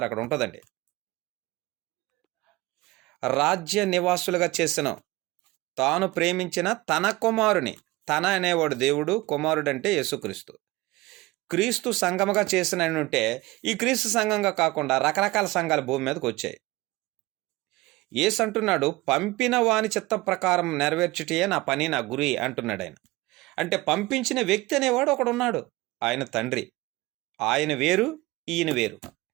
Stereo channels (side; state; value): left; quieter; 20.3 dB